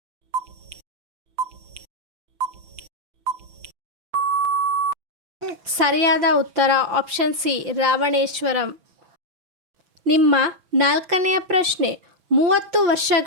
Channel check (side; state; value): left; late; 5.7 ms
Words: ಸರಿಯಾದ ಉತ್ತರ ಆಪ್ಷನ್ ಸಿ ರಾವಣೇಶ್ವರಂ. ನಿಮ್ಮ ನಾಲ್ಕನೆಯ ಪ್ರಶ್ನೆ, 30